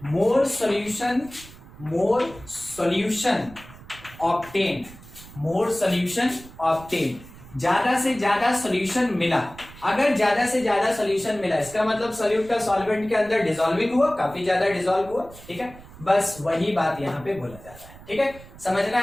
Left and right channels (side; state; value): right; noise; rumble, 19 dB below the sound